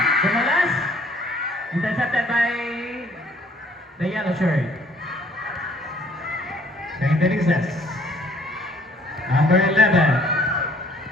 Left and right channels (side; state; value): both; normal; correlation 0.59